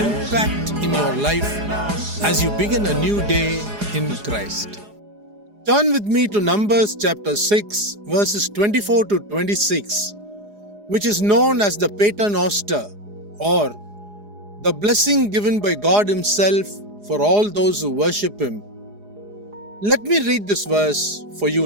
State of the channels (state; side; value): late; left; 4.8 ms